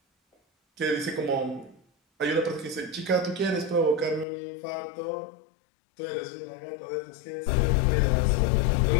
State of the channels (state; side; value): drops out; right; at 4.2 s